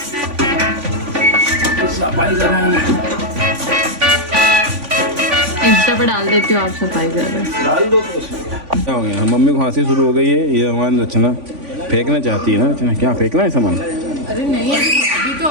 सफाई कर रहा हूँ, इंस्टा पे डाल देती हूँ, आप सफाई कर रहे हैं। डाल दो तो उसमें। क्या हो गया? मम्मी को खांसी शुरू हो गई है। ये हमारी रचना फेंकना चाहती है ना। रचना क्या फेंकना है सामान? अरे नहीं, अभी तो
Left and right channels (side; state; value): left; late; 3.5 ms